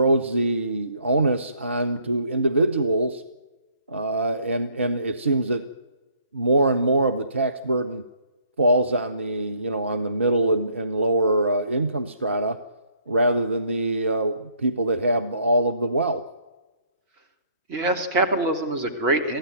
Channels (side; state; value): both; inverted; correlation -0.63